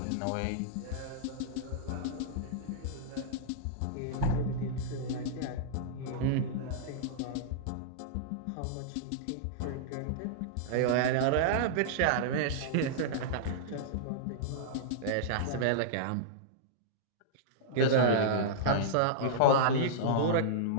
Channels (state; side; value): different; both; correlation -0.02